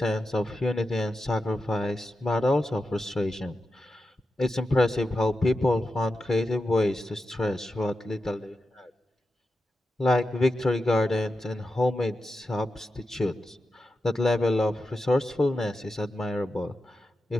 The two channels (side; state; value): both; normal; correlation 0.90